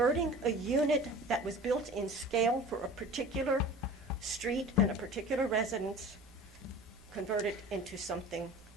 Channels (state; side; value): normal; both; correlation 0.40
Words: a unit that was built in scale for a particular street and a particular residence, convert it into something